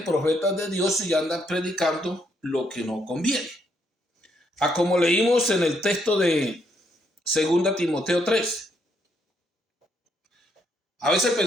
profetas de Dios y andan predicando lo que no conviene. Como leímos en el texto de 2 Timoteo 3. A veces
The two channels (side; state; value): both; normal; correlation 0.74